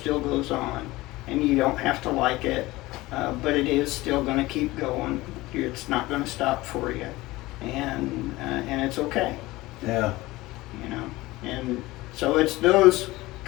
goes on, and you don't have to like it, but it is still going to keep going. It's not going to stop for you, and it's okay. Yeah. And so it's those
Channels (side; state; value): right; quieter; 19.4 dB